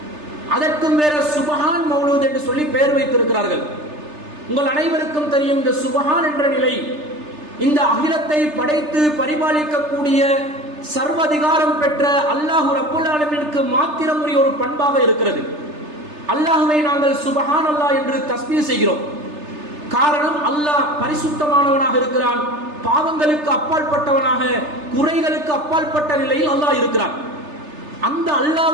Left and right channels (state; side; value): late; left; 3.3 ms